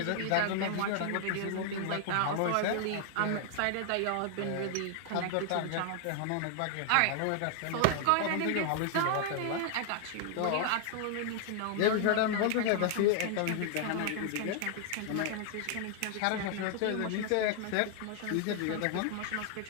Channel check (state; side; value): different; both; correlation 0.00